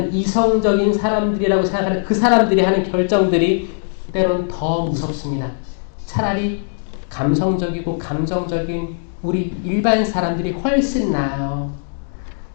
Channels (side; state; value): right; silent; digital silence